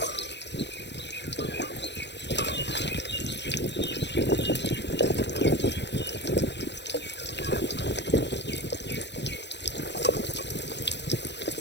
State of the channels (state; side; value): late; right; 0.51 ms